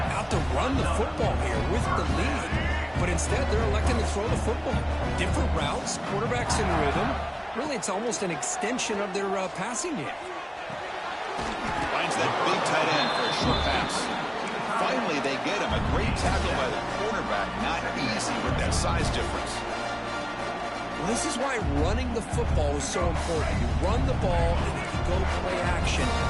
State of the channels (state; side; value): identical; both; correlation 1.00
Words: out to run the football here with the lead. But instead, they're electing to throw the football. Different routes, quarterbacks in rhythm. Really, it's almost an extension of their passing game. Finds that big tight end for a short pass. Finally, they get him. A great tackle by the quarterback. Not easy with that size difference. Well, this is why running the football is so important. You run the ball, and if you go play action,